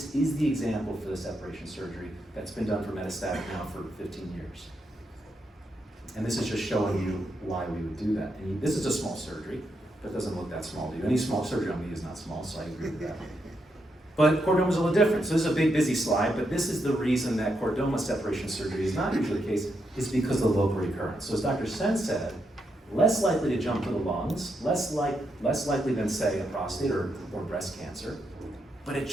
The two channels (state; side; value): normal; both; correlation 0.82